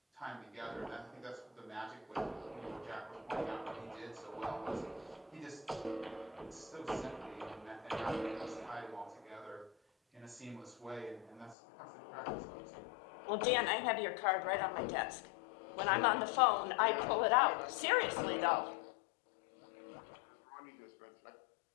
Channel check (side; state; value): right; drops out; at 11.6 s